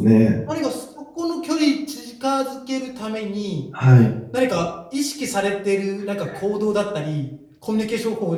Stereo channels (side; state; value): both; identical; correlation 1.00